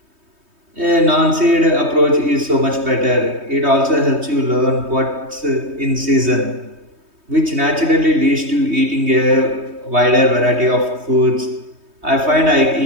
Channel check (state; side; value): late; left; 3.2 ms